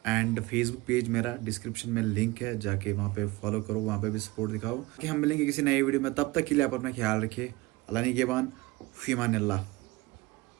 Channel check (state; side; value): quieter; left; 21.2 dB